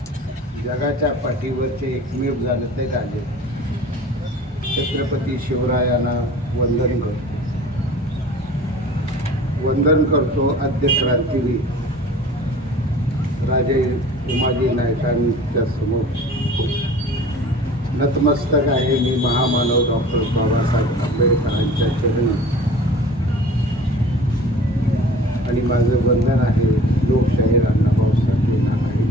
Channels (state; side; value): normal; both; correlation 0.44